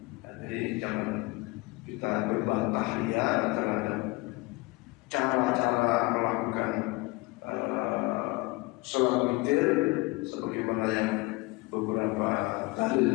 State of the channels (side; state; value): right; quieter; 24.1 dB